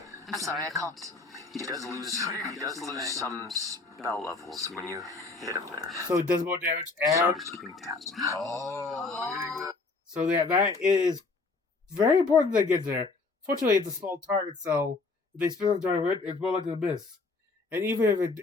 I'm sorry, I can't. He does lose some spell levels when you hit him there. So it does more damage So I'm and just keeping tabs. so that is very important to get there. Fortunately, it's a small target, so they spin on target, it's more likely to miss. And even if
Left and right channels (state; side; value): quieter; right; 3.9 dB